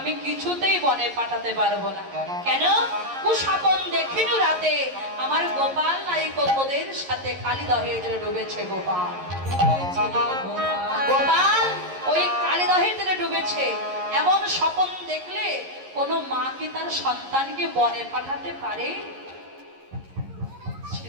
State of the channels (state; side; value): late; left; 11 ms